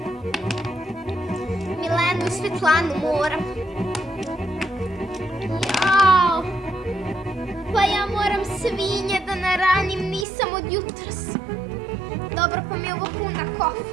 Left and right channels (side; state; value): left; drops out; at 10.2 s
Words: Milenu i Svetlanu moram. Jao. Pa ja moram svinje da naranim, nisam od jutros. Dobro, pa mi je ovo puna